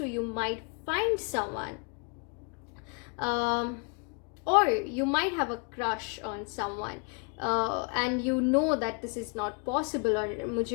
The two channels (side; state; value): right; quieter; 37.5 dB